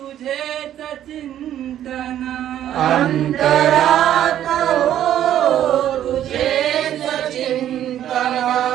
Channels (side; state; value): left; quieter; 11.3 dB